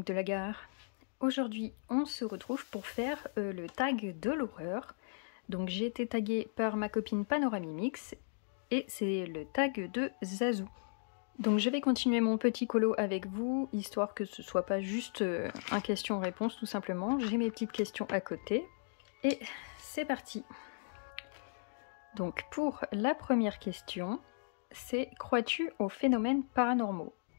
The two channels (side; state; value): right; silent; digital silence